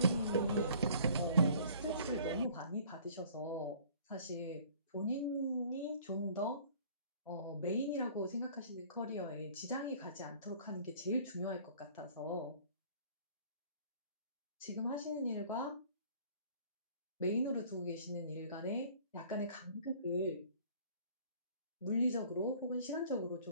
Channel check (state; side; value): inverted; both; correlation -0.53